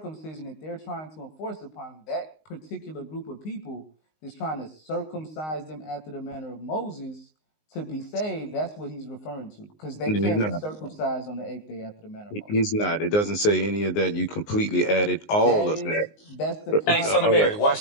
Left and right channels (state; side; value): late; right; 19 ms